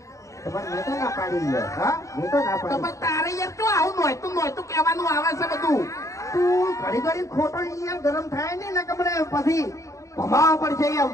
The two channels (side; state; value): right; late; 0.15 ms